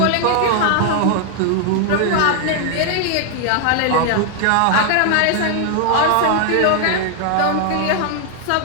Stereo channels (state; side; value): different; both; correlation 0.00